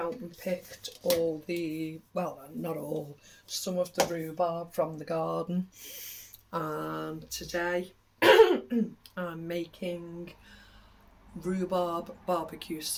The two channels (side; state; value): both; identical; correlation 1.00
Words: and picked not all, some of the rhubarb from the garden. And today I'm making rhubarb barbecue